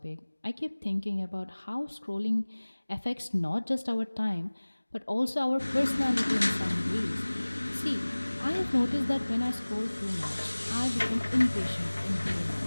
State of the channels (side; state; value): both; inverted; correlation -1.00